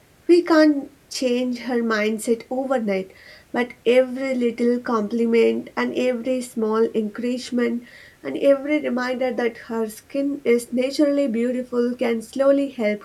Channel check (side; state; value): both; identical; correlation 1.00